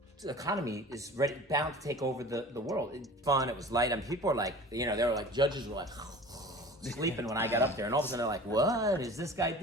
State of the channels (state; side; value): normal; both; correlation 0.41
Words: the economy is bound to take over the world? It's fun, it was light. I mean, people were like, they were like, judges were like sleeping when I got up there, and all of a sudden they're like, what is this guy